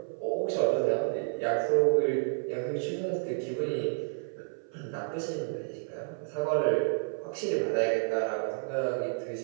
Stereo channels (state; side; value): silent; left; 55 dB below the other